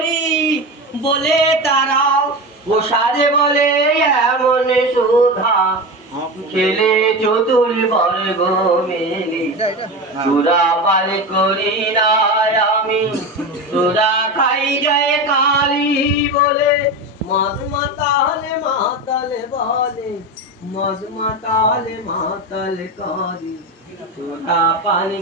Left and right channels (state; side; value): normal; both; correlation 0.23